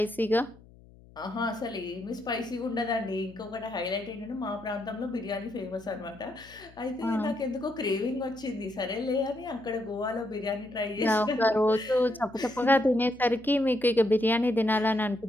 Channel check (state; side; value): noise; left; hum, 24 dB below the sound